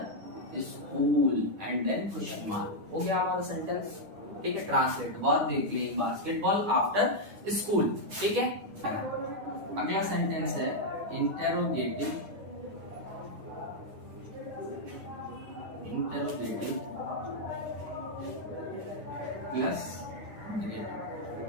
school and then question mark. हो गया हमारा सेंटेंस, ठीक है। Translate, verb they playing basketball after school, ठीक है। अगला सेंटेंस है इंटेरोगेटिव, इंटेरोगेटिव प्लस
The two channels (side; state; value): left; late; 9.9 ms